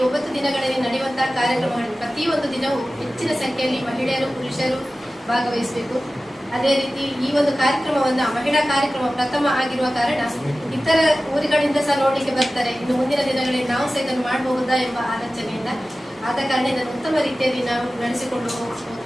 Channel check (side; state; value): both; normal; correlation 0.96